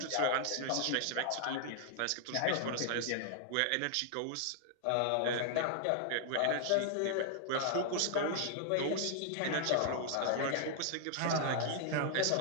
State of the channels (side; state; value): both; different; correlation 0.00